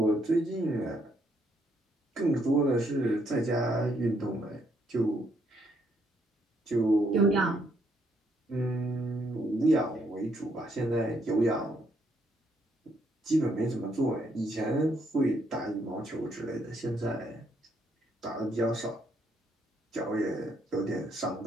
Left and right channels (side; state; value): both; normal; correlation 0.72